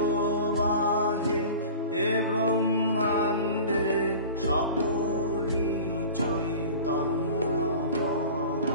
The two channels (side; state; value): both; inverted; correlation -0.38